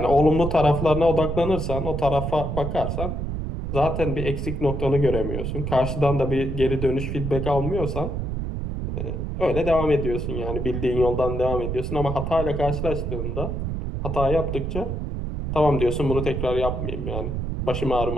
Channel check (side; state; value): right; noise; rumble, 3 dB below the sound